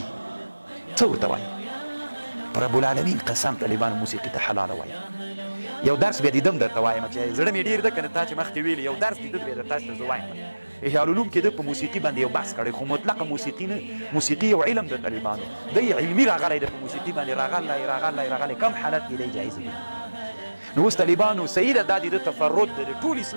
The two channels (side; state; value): both; inverted; correlation -1.00